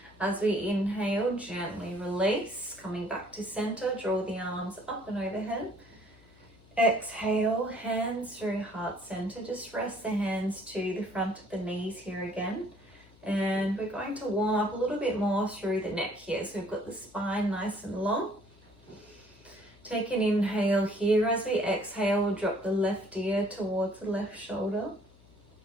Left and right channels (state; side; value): noise; left; hum, 26 dB below the sound